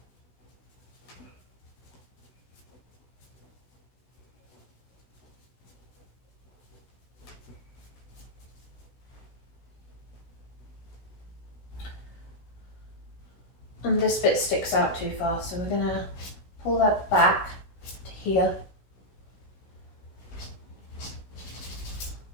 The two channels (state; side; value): late; right; 16 ms